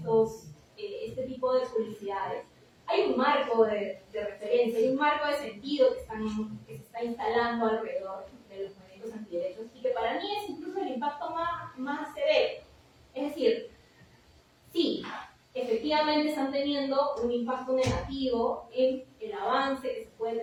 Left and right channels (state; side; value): identical; both; correlation 1.00